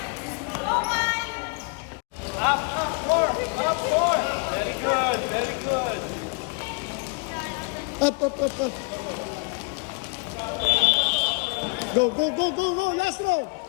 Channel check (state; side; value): quieter; right; 31.9 dB